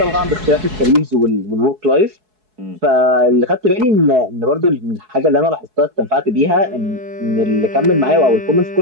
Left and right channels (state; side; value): late; left; 4.7 ms